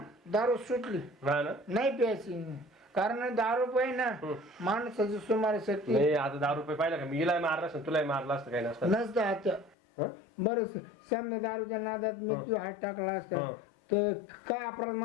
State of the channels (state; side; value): drops out; right; at 9.8 s